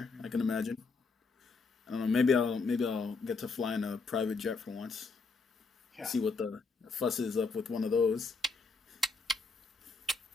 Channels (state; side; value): quieter; right; 4.4 dB